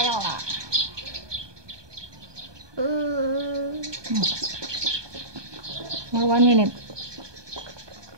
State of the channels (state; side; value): late; left; 1.2 ms